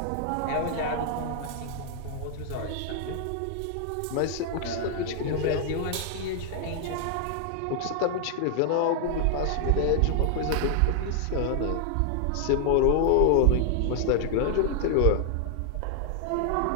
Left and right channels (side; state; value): both; different; correlation 0.00